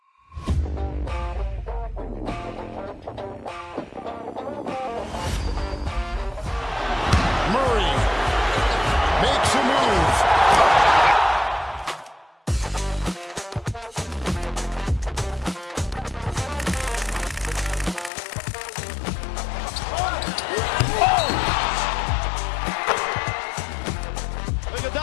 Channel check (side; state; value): right; drops out; at 18.1 s